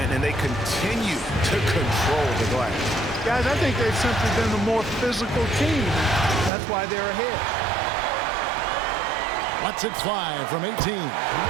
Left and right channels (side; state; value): left; drops out; at 6.5 s